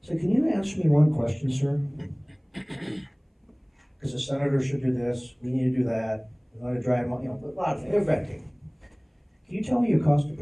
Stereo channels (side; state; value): both; identical; correlation 1.00